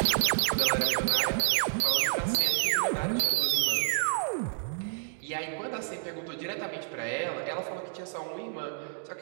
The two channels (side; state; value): left; silent; 56 dB below the other